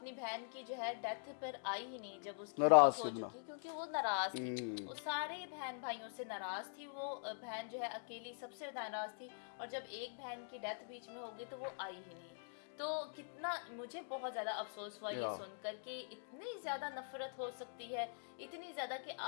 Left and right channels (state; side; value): silent; right; digital silence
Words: बहन की जो है डेथ पर आई ही नहीं जब उसकी नाराज हो चुकी, क्योंकि वो नाराज थी, वो सारे बहन भाइयों से नाराज थी, वो बहन जो है अकेली सबसे नाराज थी, और जब एक बहन की डेथ बीच में हो गई तो वो आई ही नहीं। तो कितना मुझे बहुत ज़्यादा अफसोस हुआ ये सुनकर कि इतनी ज़्यादा नफरत हो सकती है, इतनी ज़्यादा कि